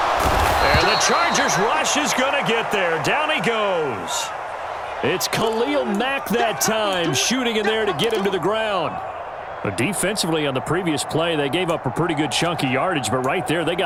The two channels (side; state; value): both; identical; correlation 1.00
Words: And the Chargers rush is going to get there. Down he goes. It's Khalil Mack that time, shooting in there to get him to the ground. But defensively on the previous play, they gave up a pretty good chunk of yardage, but right there, they